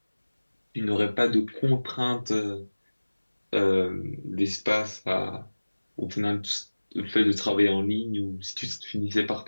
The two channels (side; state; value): both; inverted; correlation -1.00